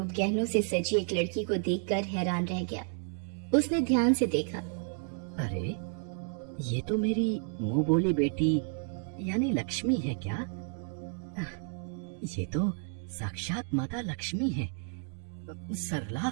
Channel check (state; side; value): silent; left; 57 dB below the other